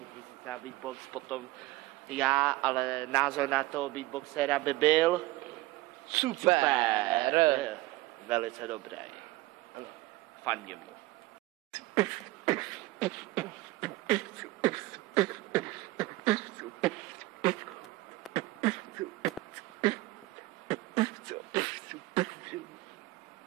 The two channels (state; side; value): quieter; left; 19.1 dB